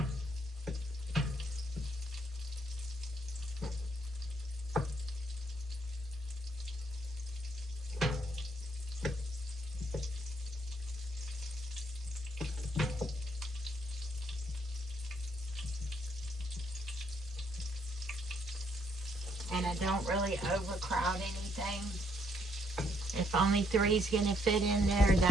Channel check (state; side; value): normal; both; correlation 0.70